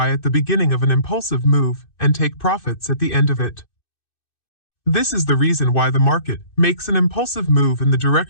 at the beginning of an impulsive move and take profits at the end of it. This is the reason why the market makes an impulsive move in the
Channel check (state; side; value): late; right; 2.6 ms